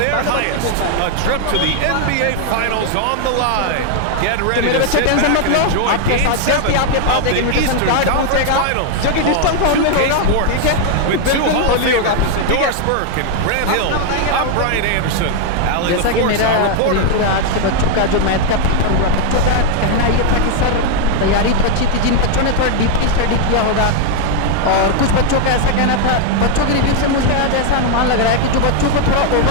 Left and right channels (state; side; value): different; both; correlation 0.00